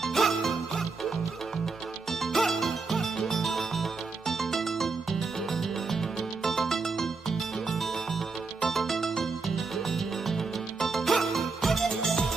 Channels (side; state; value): left; quieter; 4.3 dB